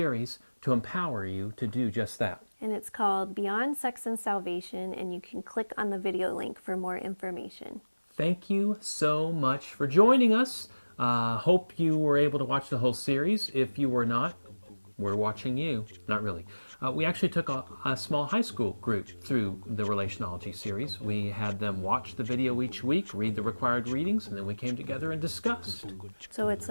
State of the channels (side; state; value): both; inverted; correlation -1.00